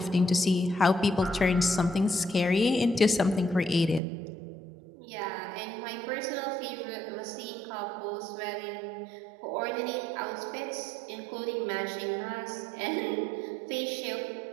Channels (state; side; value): drops out; left; at 4.0 s